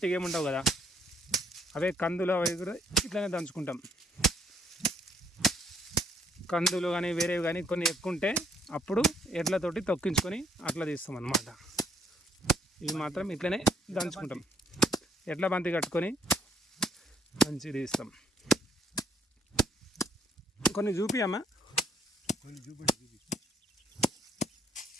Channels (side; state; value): both; normal; correlation 0.68